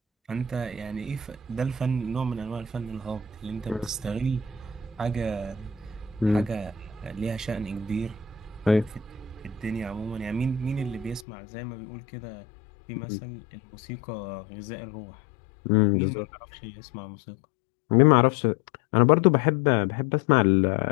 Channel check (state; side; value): drops out; right; at 11.2 s